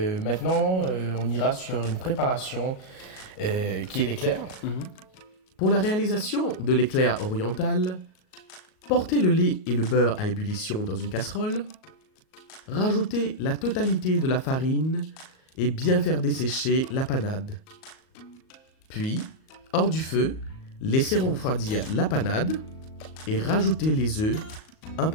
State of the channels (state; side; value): late; right; 38 ms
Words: on ira sur une préparation qui est l'éclair. Pour la réalisation de l'éclair oriental, portez le lait et le beurre à ébullition dans une casserole, rajoutez la totalité de la farine et bien faire dessécher la panade. Puis, hors du feu, laissez refroidir la panade et rajoutez les œufs un